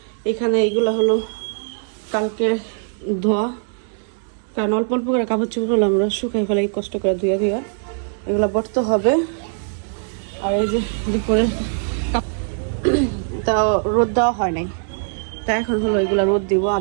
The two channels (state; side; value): silent; left; digital silence